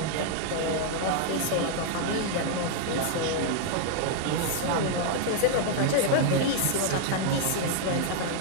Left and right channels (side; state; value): both; different; correlation -0.01